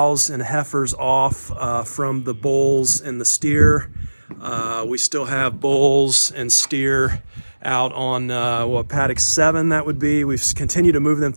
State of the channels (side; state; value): both; inverted; correlation -1.00